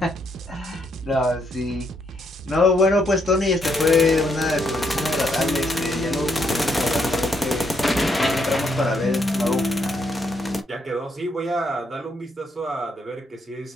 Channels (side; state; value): both; normal; correlation 0.75